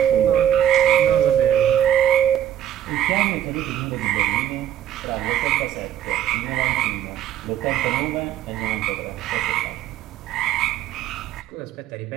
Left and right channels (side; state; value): left; quieter; 10.8 dB